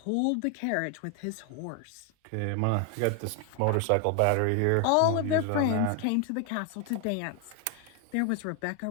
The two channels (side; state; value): both; different; correlation 0.01